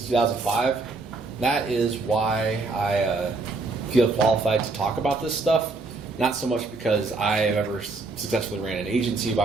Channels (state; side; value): quieter; left; 3.6 dB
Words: 2005. That is why I feel qualified to talk about this stuff. Not so much because I have ever successfully ran an agency